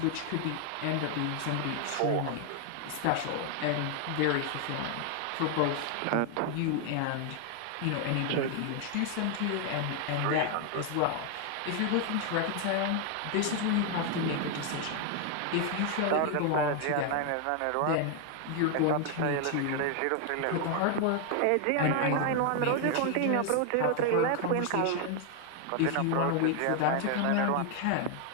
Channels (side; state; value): both; different; correlation 0.00